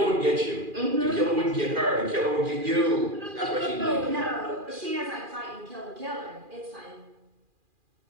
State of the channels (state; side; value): late; left; 2.4 ms